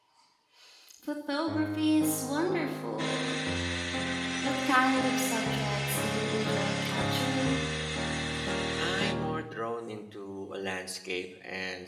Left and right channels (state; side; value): identical; both; correlation 1.00